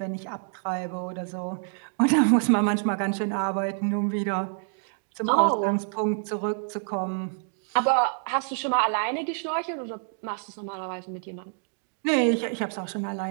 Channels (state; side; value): silent; left; digital silence